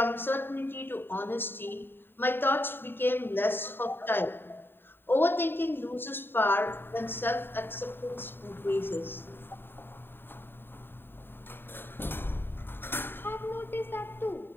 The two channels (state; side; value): late; right; 0.10 ms